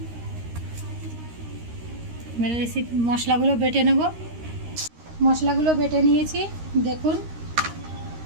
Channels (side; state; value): left; late; 13 ms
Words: মশলাগুলো বেটে নেব। মশলাগুলো বেটে নিয়েছি দেখুন।